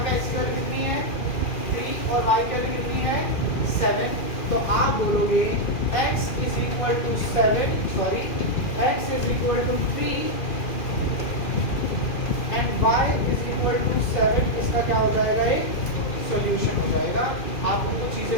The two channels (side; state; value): right; late; 2.4 ms